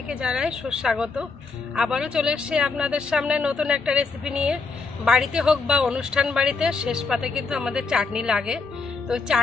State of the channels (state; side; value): quieter; right; 4.3 dB